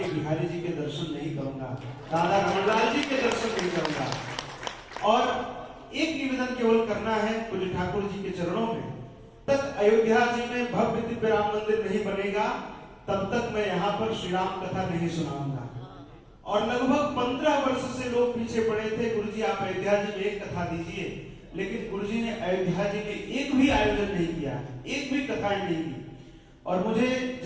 बिहारी जी के दर्शन नहीं करूंगा, राधा रमणलाल जी के दर्शन नहीं करूंगा। और एक निवेदन केवल करना है पूज्य ठाकुर जी के चरणों में, तक अयोध्या जी में भव्य दिव्य राम मंदिर नहीं बनेगा तब तक मैं यहाँ पर श्री राम कथा नहीं सुनाऊंगा। और लगभग 15 वर्ष से लोग पीछे पड़े थे, गुरु जी आप अयोध्या जी में एक कथा दीजिए, लेकिन गुरु जी ने अयोध्या जी में एक भी आयोजन नहीं किया, एक भी कथाएं नहीं की। और मुझे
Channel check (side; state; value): both; identical; correlation 1.00